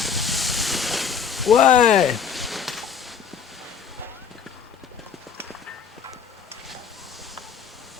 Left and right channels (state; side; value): quieter; right; 7.1 dB